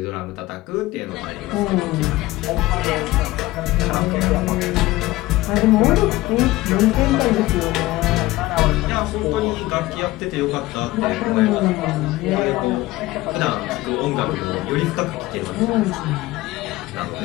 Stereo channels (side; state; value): right; quieter; 18.3 dB